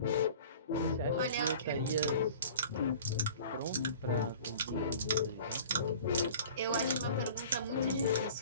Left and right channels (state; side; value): inverted; both; correlation -0.44